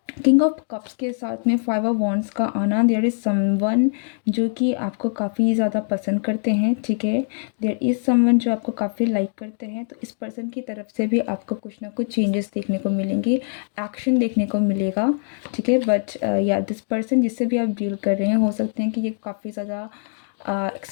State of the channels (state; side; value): silent; right; digital silence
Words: किंग ऑफ कप्स के साथ में 5 ऑफ वॉन्ड्स का आना, देयर इज़ समवन जो कि आपको काफ़ी ज़्यादा पसंद करते हैं। ठीक है, देयर इज़ समवन जो आपको काफ़ी लाइक करते हैं, तो इस पर्सन की तरफ से भी आपको कुछ ना कुछ चेंजेस देखने को मिलेंगे, एक्शन देखने को मिलेगा। ठीक है, बट या दिस पर्सन जिससे भी आप डील कर रहे हैं, हो सकते हैं कि ये काफ़ी ज़्यादा